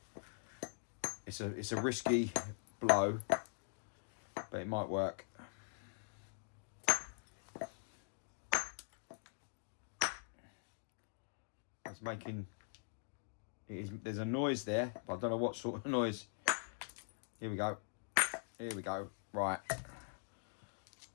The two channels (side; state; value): right; silent; digital silence